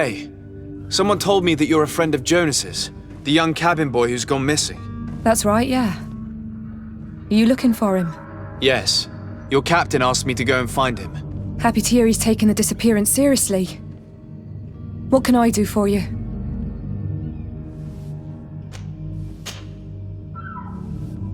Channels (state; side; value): identical; both; correlation 1.00